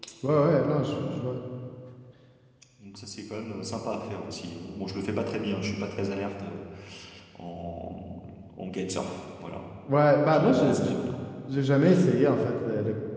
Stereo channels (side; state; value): both; identical; correlation 1.00